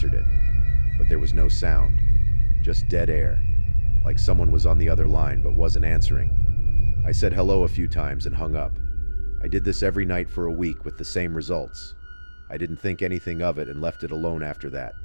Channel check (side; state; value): both; inverted; correlation -1.00